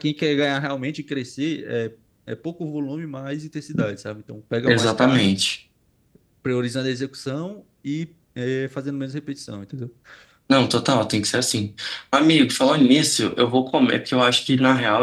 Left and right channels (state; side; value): identical; both; correlation 1.00